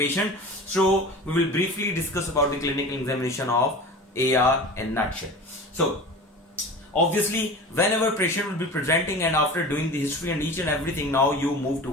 So we will briefly discuss about the clinical examination of AR in nutshell. So obviously, whenever patient will be presenting and after doing the history and each and everything, now you move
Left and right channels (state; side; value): normal; both; correlation 0.35